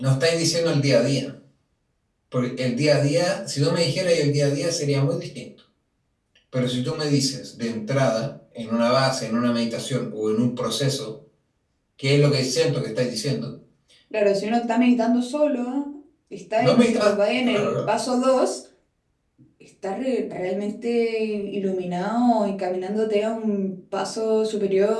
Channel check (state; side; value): identical; both; correlation 1.00